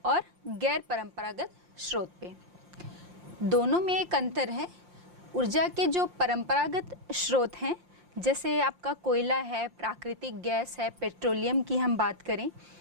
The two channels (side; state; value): left; late; 5.7 ms